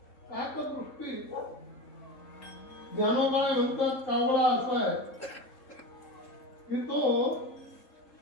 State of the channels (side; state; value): right; late; 3.7 ms